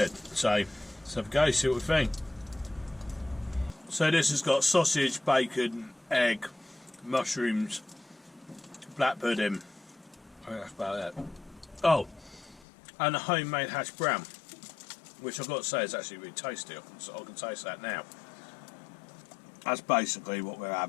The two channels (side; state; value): right; drops out; at 12.7 s